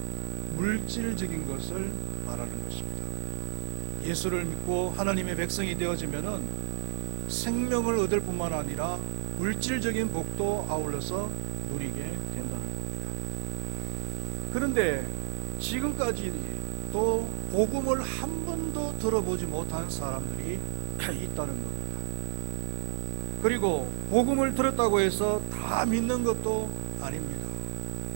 물질적인 것을 말하는 것입니다. 예수를 믿고 하나님의 백성이 되어지면은 생명을 얻을 뿐만 아니라 물질적인 복도 아울러서 누리게 된다는 겁니다. 그런데 지금까지도 복음을 한 번도 들어보지 못한 사람들이 있다는 겁니다. 그리고 복음을 들었다고 해서 다 믿는 것도 아닙니다.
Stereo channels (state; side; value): silent; left; digital silence